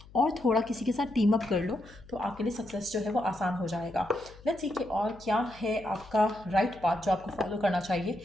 और थोड़ा किसी के साथ टीम अप कर लो, तो आपके लिए सक्सेस जो है वो आसान हो जाएगा। लेट्स सी कि और क्या है आपका राइट पाथ जो आपको फॉलो करना चाहिए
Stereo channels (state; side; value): noise; left; hum, 21 dB below the sound